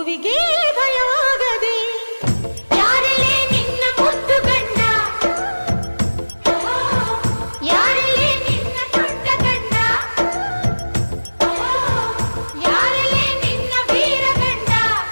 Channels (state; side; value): inverted; both; correlation -1.00